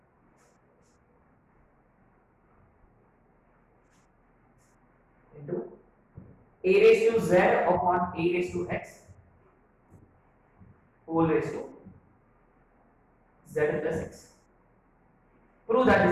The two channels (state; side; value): identical; both; correlation 1.00